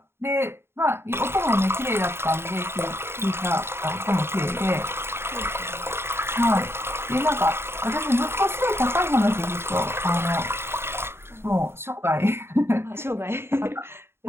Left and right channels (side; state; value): left; late; 0.12 ms